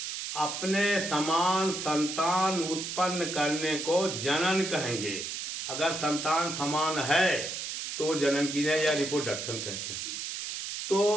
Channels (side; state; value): right; noise; hiss, 5 dB below the sound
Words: अपने समान संतान उत्पन्न करने को जनन कहेंगे। अगर संतान समान है तो जनन की या रिप्रोडक्शन कहते हैं।